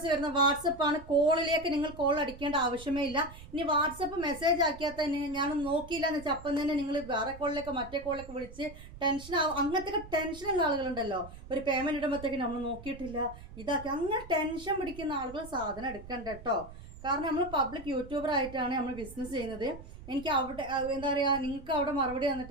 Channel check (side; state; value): right; noise; rumble, 16 dB below the sound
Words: വരുന്ന വാട്സപ്പാണ്. കോളിലേക്ക് നിങ്ങൾ കോൾ അടിക്കേണ്ട ആവശ്യമേ ഇല്ല. ഇനി വാട്സപ്പ് മെസ്സേജ് ആക്കിയാൽ തന്നെ ഞാൻ നോക്കിയില്ല എന്ന് വെച്ചാൽ അപ്പം തന്നെ നിങ്ങൾ വേറെ കോളിലേക്ക് മറ്റേ കോളിലേക്ക് വിളിച്ച് ടെൻഷൻ ആവും. അങ്ങനത്തെ ടെൻഷനുള്ള ആളുകളുണ്ടല്ലോ, ഒരു പേയ്മെന്റ് ഇടുമ്പോഴത്തേക്ക് നമ്മൾ നോക്കിയിട്ടില്ല ഇതാക്കി, അങ്ങനെ ടെൻഷൻ പിടിക്കുന്ന ആളുകൾ സാധനം എടുക്കണ്ട കേട്ടോ. കാരണം നമ്മൾ പബ്ലിക് യൂട്യൂബർ ആയിട്ടാണ് നമ്മൾ ബിസിനസ് ചെയ്യുന്നത്. എനിക്ക് അവിടെ എന്താ പറയുക, നിങ്ങൾക്ക് അവിടെ മറുപടി